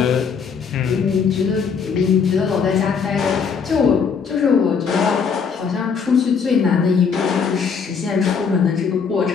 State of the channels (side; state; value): right; quieter; 6.0 dB